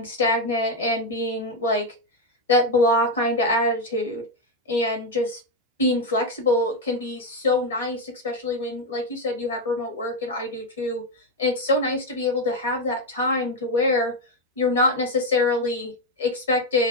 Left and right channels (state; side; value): normal; both; correlation 0.06